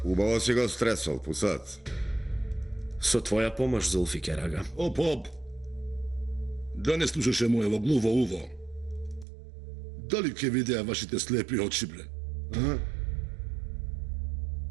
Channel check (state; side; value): drops out; left; at 9.2 s